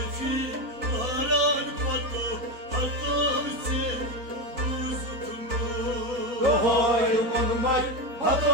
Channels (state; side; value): late; left; 4.1 ms